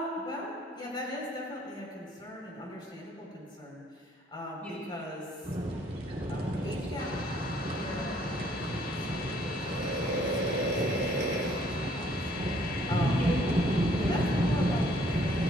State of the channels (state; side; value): normal; both; correlation 0.63